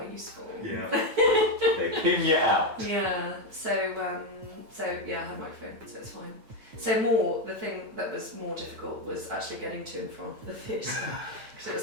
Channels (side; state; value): left; late; 9.2 ms